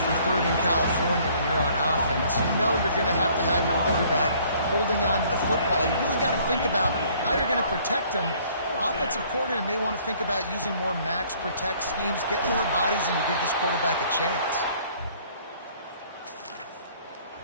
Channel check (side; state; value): both; inverted; correlation -0.59